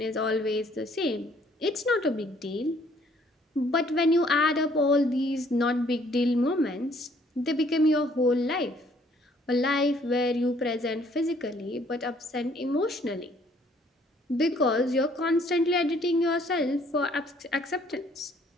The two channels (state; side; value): normal; both; correlation 0.62